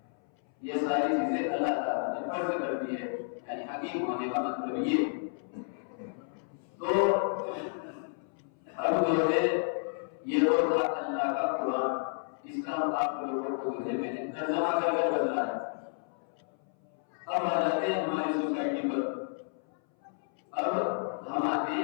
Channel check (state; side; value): silent; right; 57 dB below the other